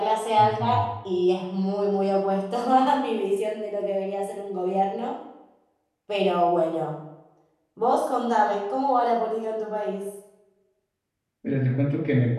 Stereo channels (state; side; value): identical; both; correlation 1.00